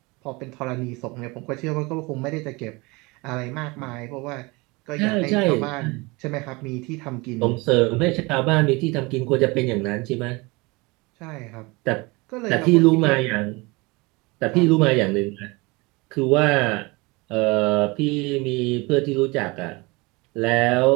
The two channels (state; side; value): quieter; left; 25.2 dB